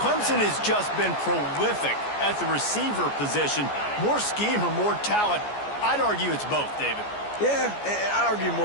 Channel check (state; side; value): late; right; 14 ms